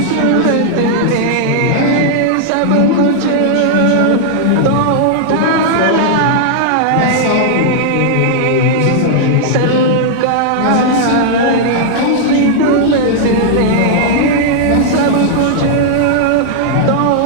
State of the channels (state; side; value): different; both; correlation -0.01